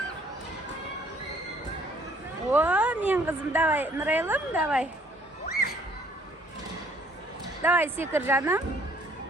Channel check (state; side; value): normal; both; correlation 0.60